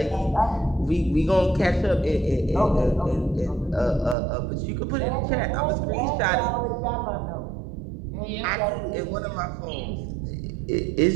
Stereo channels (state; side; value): drops out; left; at 4.2 s